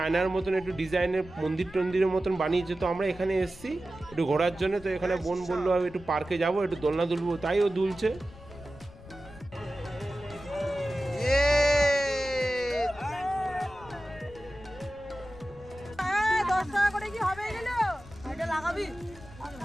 মতন একটু ডিজাইনের মন্দিরের মতন বানিয়েছে। তো আমরা এখানে এসেছি একটু ঘোরার জন্য। তো এখানে বোন বললো আমি একটু পার্কে যাবো, একটু দোলনা দুলবো, তাই ও দুলছে। করে কি হবে? লাগাবি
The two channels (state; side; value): noise; left; rumble, 20 dB below the sound